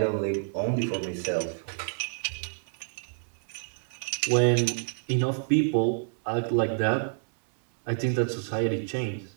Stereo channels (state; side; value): silent; left; digital silence